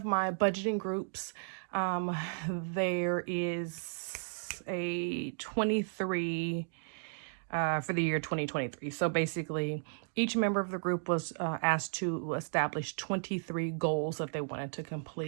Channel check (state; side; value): silent; left; digital silence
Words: my budgeting groups, there is a 23 for the year 2023. So basically, each member of the group was asked to establish 23 goals that they wanted to